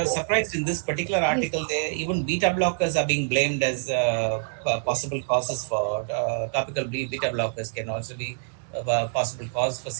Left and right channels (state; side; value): silent; left; digital silence